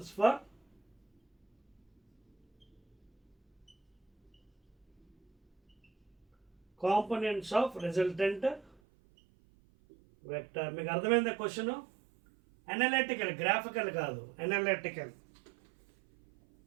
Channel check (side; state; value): left; drops out; at 8.8 s